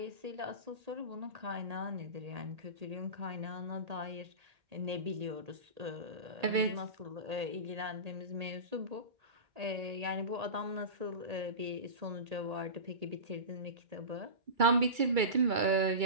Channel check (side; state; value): left; late; 2.3 ms